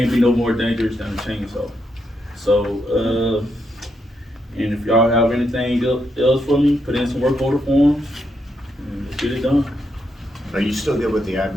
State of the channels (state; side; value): normal; both; correlation 0.80